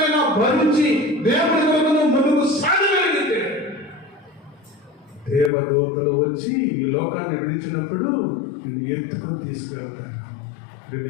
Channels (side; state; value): right; drops out; at 5.5 s